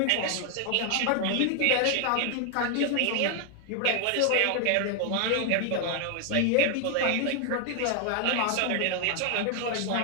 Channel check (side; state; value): both; different; correlation 0.00